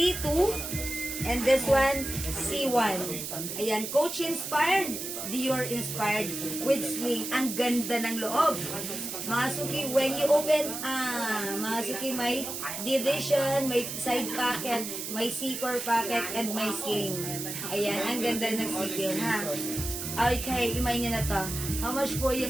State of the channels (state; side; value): noise; right; hiss, 6 dB below the sound